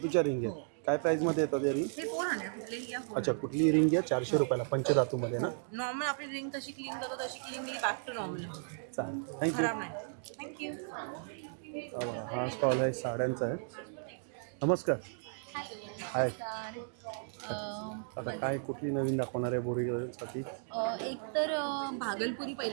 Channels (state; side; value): silent; left; digital silence